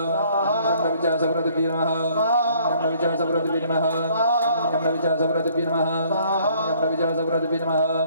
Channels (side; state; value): both; inverted; correlation -0.61